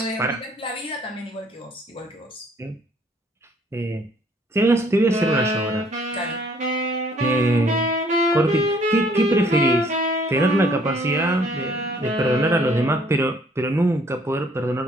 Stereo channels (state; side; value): normal; both; correlation 0.61